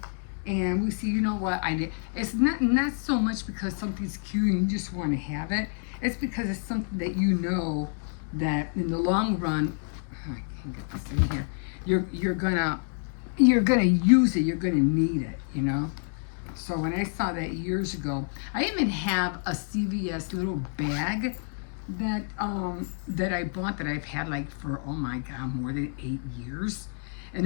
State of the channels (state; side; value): silent; right; 57 dB below the other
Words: and we see. You know what? I did. It's not so much because something's cute and you just want to have it. It's because it's something that that in the long run, I can't get this in here. You're gonna use it. You're gonna need it. So when I saw that years ago, I even have a CVS little bag that I bought that I've had like for, oh my God, more than 8 years.